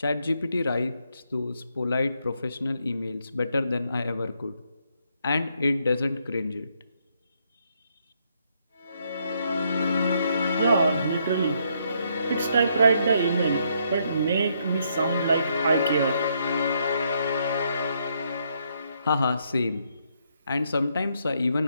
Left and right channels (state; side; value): inverted; both; correlation -0.74